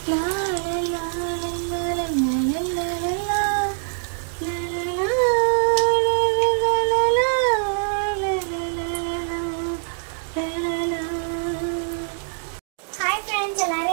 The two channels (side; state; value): left; silent; digital silence